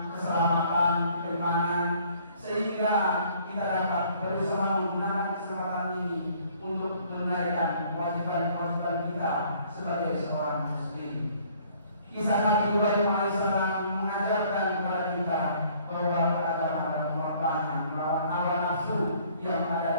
keselamatan, keimanan, sehingga kita dapat berusaha menggunakan kesempatan ini untuk menunaikan kewajiban-kewajiban kita sebagai seorang muslim. Kisah Nabi Ibrahim alaihissalam mengajarkan kepada kita bahwa beragama adalah pengorbanan melawan hawa nafsu yang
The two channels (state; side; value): inverted; both; correlation -0.59